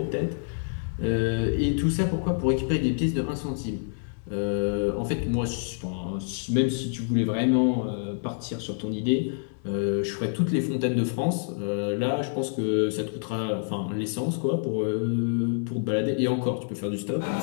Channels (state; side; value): silent; right; digital silence